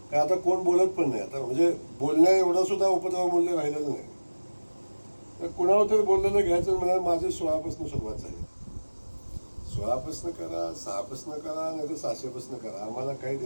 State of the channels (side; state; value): both; inverted; correlation -1.00